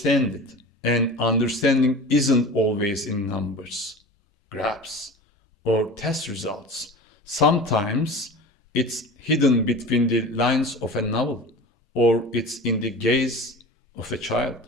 it, and understanding isn't always in numbers, graphs, or test results. Sometimes it's hidden between the lines of a novel, or it's in the gaze of a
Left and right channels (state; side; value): normal; both; correlation 0.35